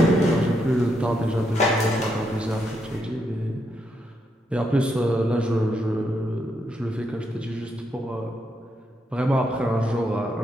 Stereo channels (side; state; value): both; normal; correlation 0.79